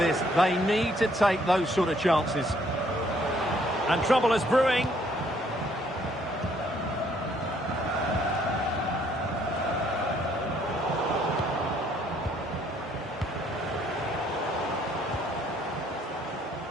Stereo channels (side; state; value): both; normal; correlation 0.65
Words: they need to take those sort of chances. And trouble is brewing.